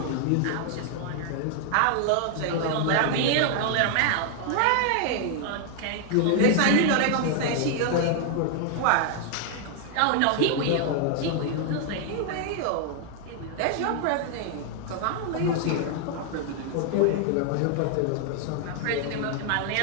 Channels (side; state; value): both; different; correlation 0.00